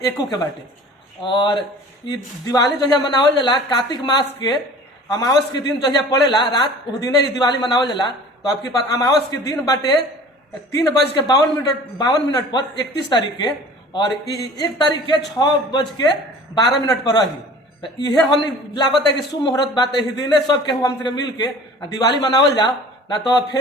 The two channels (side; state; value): both; normal; correlation 0.45